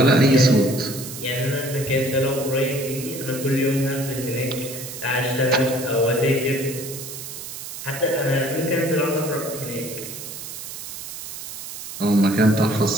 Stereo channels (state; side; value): noise; right; hiss, 10 dB below the sound